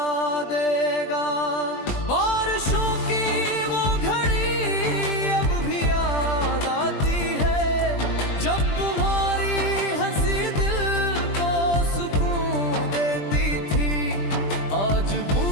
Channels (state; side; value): late; right; 20 ms